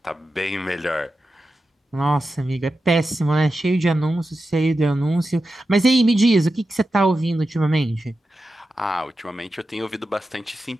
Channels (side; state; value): both; normal; correlation 0.91